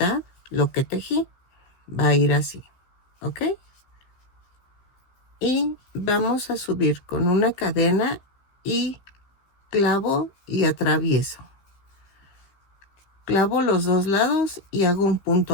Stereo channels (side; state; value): right; late; 15 ms